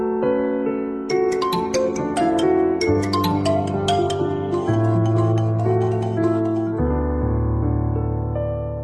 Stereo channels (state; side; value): identical; both; correlation 1.00